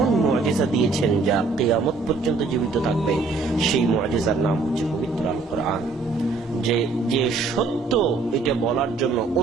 মুআজিজা দিয়েছেন যা কিয়ামত পর্যন্ত জীবিত থাকবে। সেই মুআজিজার নাম হচ্ছে পবিত্র আল কোরআন। যে সত্য এটা বলার জন্য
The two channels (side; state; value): left; quieter; 4.0 dB